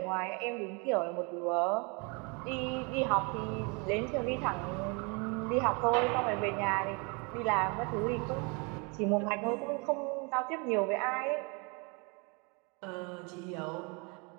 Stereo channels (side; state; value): left; quieter; 31.7 dB